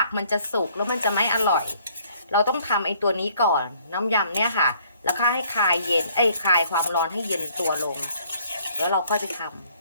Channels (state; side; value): inverted; both; correlation -0.62